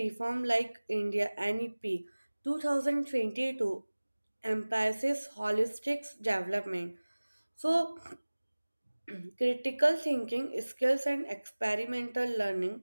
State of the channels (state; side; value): inverted; both; correlation -1.00